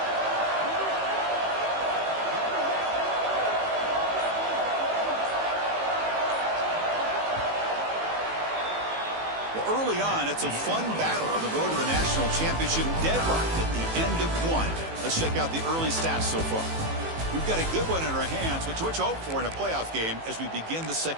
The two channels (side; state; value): left; late; 18 ms